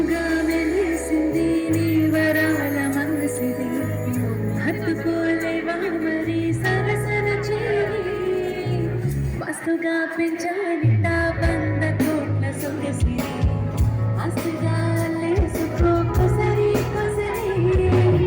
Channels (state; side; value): identical; both; correlation 1.00